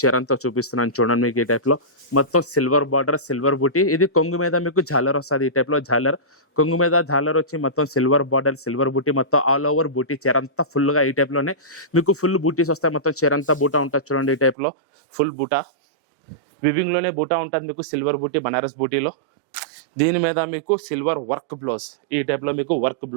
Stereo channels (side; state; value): left; drops out; at 14.6 s